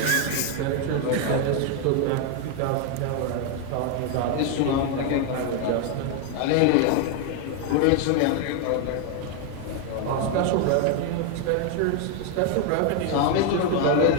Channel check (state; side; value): different; both; correlation 0.01